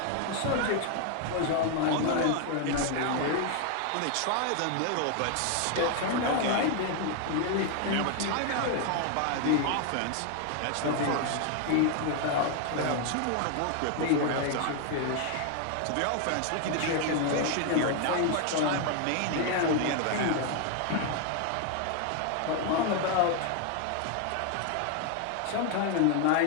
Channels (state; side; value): different; both; correlation 0.01